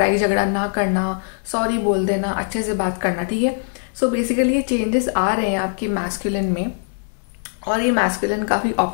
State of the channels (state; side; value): silent; right; 65 dB below the other